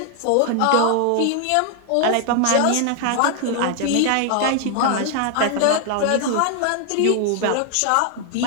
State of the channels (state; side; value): different; both; correlation 0.00